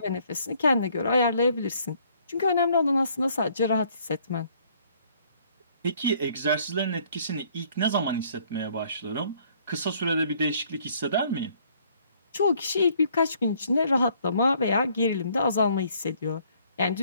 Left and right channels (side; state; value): both; inverted; correlation -0.63